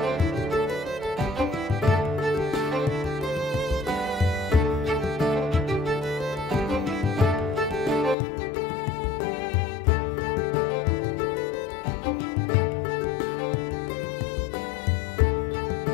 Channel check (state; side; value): drops out; right; at 8.2 s